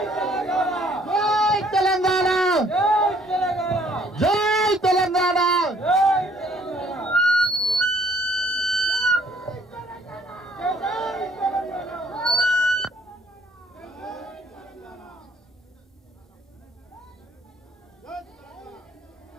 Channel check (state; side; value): normal; both; correlation 0.62